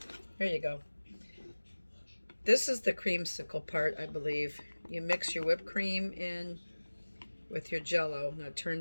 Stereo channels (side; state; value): both; inverted; correlation -1.00